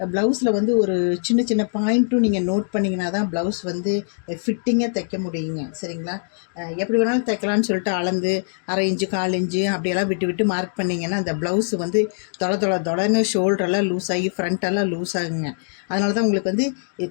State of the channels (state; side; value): silent; right; digital silence